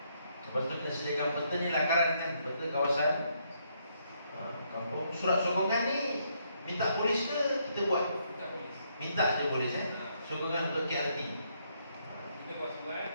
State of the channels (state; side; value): inverted; both; correlation -0.74